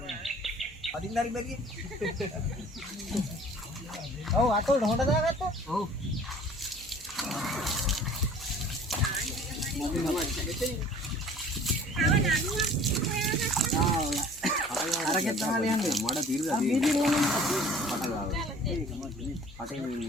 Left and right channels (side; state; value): both; normal; correlation 0.50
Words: අදින්න හරි බැරිය. ඔව් අතෝට හොඳ දාගත්තා. ඔව්. අරගෙන තමයි යන්නේ. මඩ පිරලා තියෙනවා. පට ගාව. පටේ